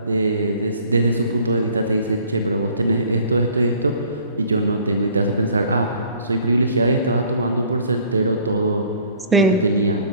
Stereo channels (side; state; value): both; inverted; correlation -0.52